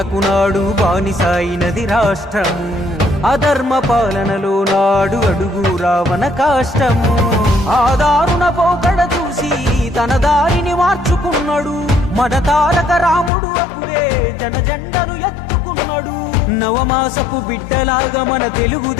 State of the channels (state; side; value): drops out; right; at 13.3 s